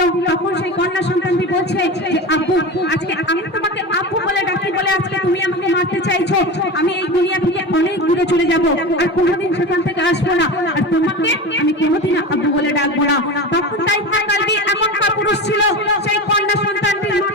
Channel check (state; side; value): normal; both; correlation 0.27